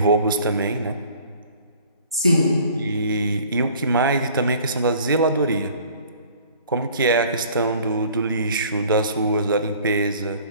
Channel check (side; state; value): both; inverted; correlation -0.51